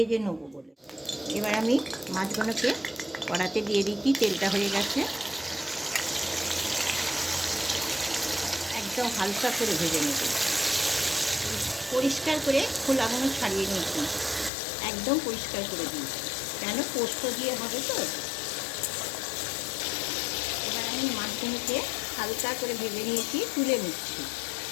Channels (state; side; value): drops out; right; at 14.5 s